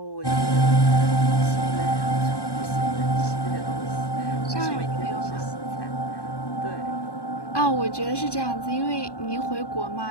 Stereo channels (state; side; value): late; right; 1.1 ms